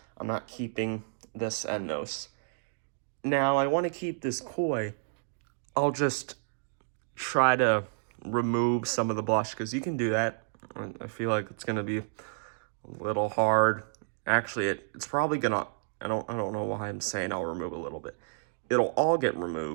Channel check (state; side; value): silent; left; digital silence